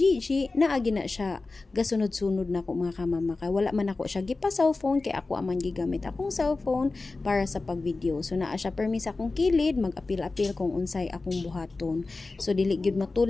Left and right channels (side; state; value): right; quieter; 3.6 dB